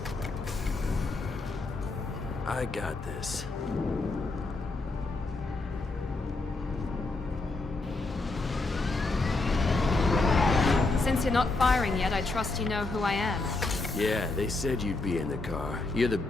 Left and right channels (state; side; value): quieter; right; 3.3 dB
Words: I got this. Since you're not firing yet, I trust you know who I am. Yeah, they said you'd be in the car. You're the